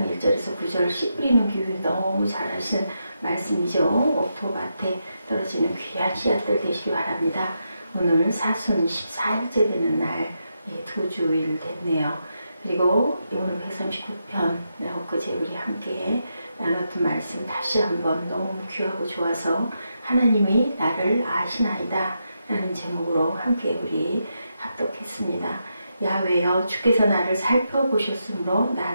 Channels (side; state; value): both; inverted; correlation -0.84